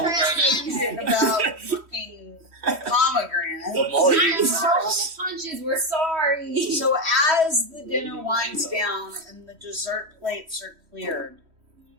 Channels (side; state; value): left; late; 3.1 ms